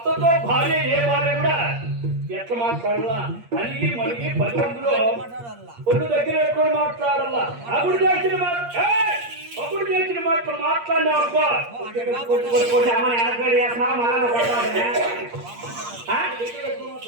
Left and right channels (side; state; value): left; late; 8.5 ms